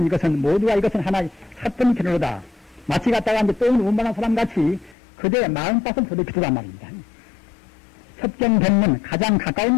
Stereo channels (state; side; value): drops out; right; at 5.0 s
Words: 이것은 모두가 이것은 하나의 사건 견으로다. 마치 갖다가 이제 똥을 운반한 사람 같이 그대의 마음밭을 더럽히더란 말입니다. 섭경 법문, 가장